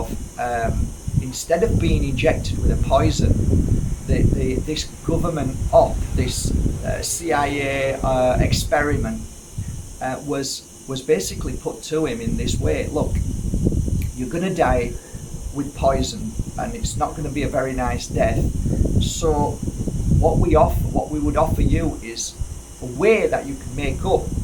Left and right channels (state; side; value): identical; both; correlation 1.00